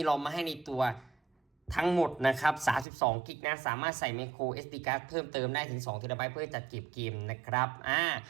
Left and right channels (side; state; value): left; drops out; at 2.9 s